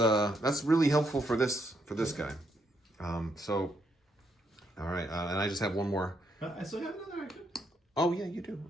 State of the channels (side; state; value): both; normal; correlation 0.76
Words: really helpful for this guy. All right, and I just have one more. I still have another action. Oh yeah, you do.